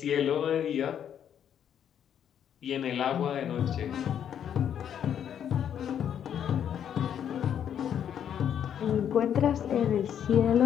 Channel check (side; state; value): right; quieter; 9.1 dB